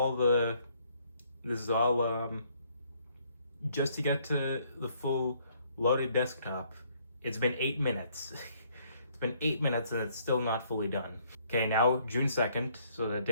just to get to the full loaded desktop. It's been 8 minutes. It's been 8 minutes and it's still not fully done. Okay, now June 2nd, so the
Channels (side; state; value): both; inverted; correlation -0.66